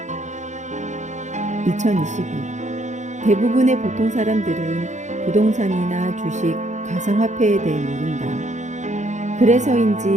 2022 대부분의 보통 사람들은 부동산이나 주식, 가상화폐에 대해 모른다.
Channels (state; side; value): late; left; 0.35 ms